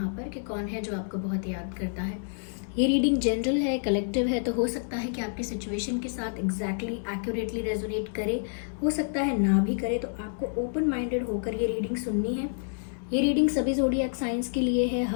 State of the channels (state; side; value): silent; right; 59 dB below the other